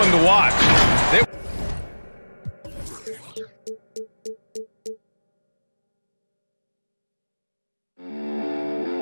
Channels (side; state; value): both; inverted; correlation -1.00